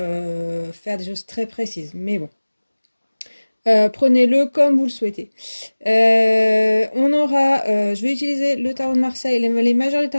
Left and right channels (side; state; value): both; inverted; correlation -1.00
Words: faire des choses très précises. Mais bon. Prenez-le comme vous le souhaitez. Je vais utiliser le tarot de Marseille, les majeurs du